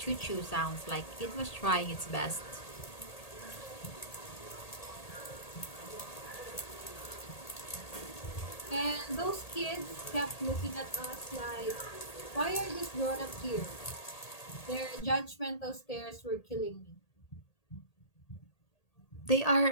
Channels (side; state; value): right; late; 1.8 ms